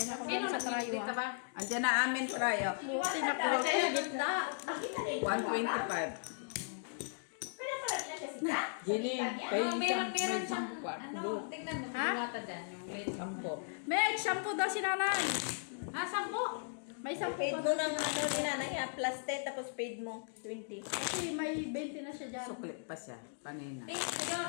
ako Sino sa trayo. nagdito Ah. ba? Andiyan na amin tayo. Buti nakuha ko sa gitna. 125. Pero pala na siya sita? Jenny, Oh, meron siyang, tingnan mo, Ha? diwata dyan, yung late sampo. May shampoo daw si nanay. Ah, sampo? May shampoo Paid pa. mo ng ano ni nanay ha, plus 10 tapos paid mo 20. Kasi may 20 na siya dyan. Suklit pa siya. Kanina.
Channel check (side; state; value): right; silent; digital silence